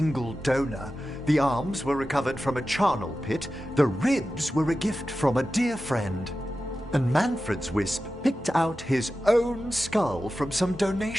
donor. The arms were recovered from a charnel pit. The ribs were a gift from a dear friend. And Manfred's wisp picked out his own skull from some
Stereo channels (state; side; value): normal; both; correlation 0.93